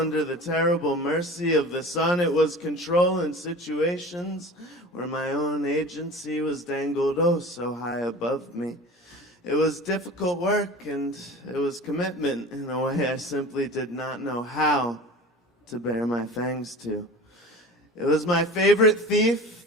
the terrible mercy of the sun. It was control in situations where my own agency was dangled oh so high above me. It was difficult work and it was commitment in a way I simply did not know how to bare my fangs to. It was my favorite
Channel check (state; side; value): normal; both; correlation 0.37